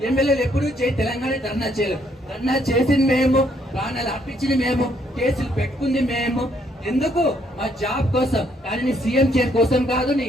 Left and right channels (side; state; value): both; normal; correlation 0.70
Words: ఎమ్మెల్యేలు ఎప్పుడు జై తెలంగాణ ధర్నా చేయలేవు. ధర్నా చేసింది మేము, ప్రాణాలు అర్పించింది మేము, కేసులు పెట్టుకుంది మేము. ఎందుకు? మా జాబ్ కోసం. కానీ నీ సీఎం చైర్ కోసం కాదు, నీ